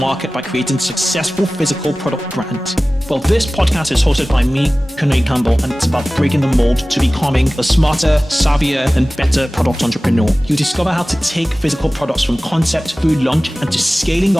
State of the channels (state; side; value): normal; both; correlation 0.97